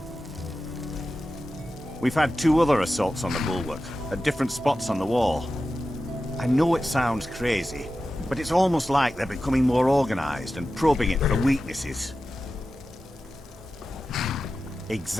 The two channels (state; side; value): normal; both; correlation 0.93